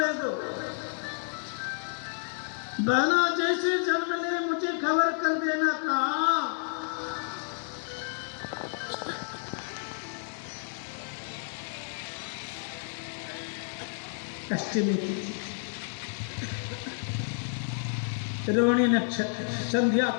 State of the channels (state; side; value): silent; right; 58 dB below the other